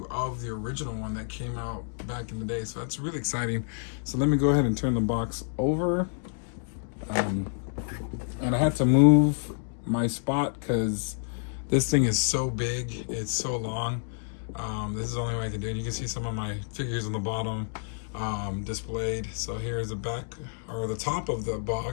of the original one that came out back in the day. So that's really exciting. So let me go ahead and turn the box over. And I had to move my spot because this thing is so big. It's so long. This is the only way I can do it. You can see some of my figures on the bottom displayed. So here's the back, or the top of the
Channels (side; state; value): right; silent; digital silence